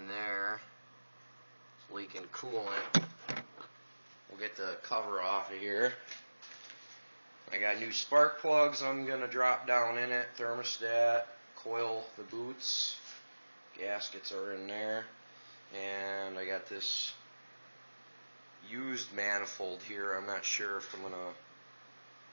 there, it's leaking coolant. We'll get the cover off of here. I got new spark plugs I'm going to drop down in it, thermostat, coil the boots, gaskets are in there, and I got this used manifold here. I'm not sure if I'm going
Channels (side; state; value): both; inverted; correlation -1.00